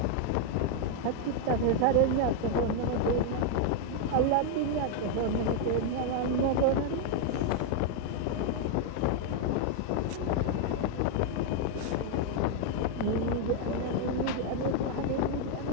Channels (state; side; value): different; both; correlation 0.00